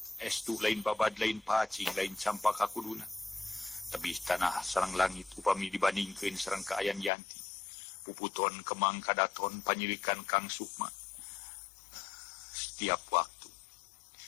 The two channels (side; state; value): right; drops out; at 7.1 s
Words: Estu lain babad lain pacing lain campaka kuduna. Tebih tanah sareng langit upami dibandingkeun sareng kaayan Yanti. Puputon kemang kadaton panyirikan Kang Sukma. Setiap waktu.